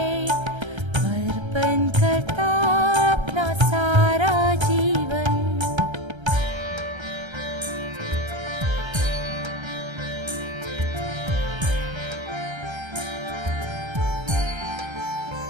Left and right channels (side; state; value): left; late; 1.3 ms